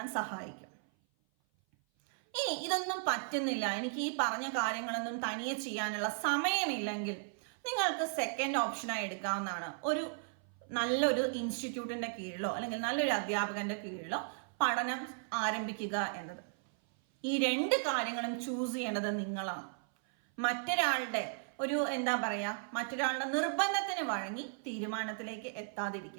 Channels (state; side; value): silent; left; 54 dB below the other